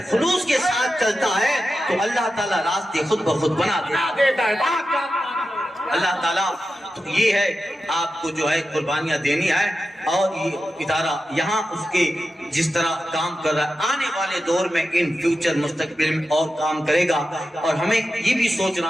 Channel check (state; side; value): normal; both; correlation 0.91